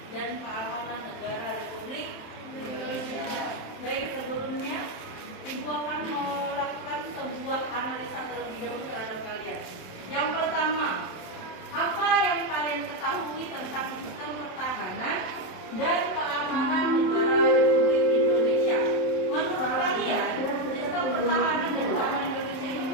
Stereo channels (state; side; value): late; right; 27 ms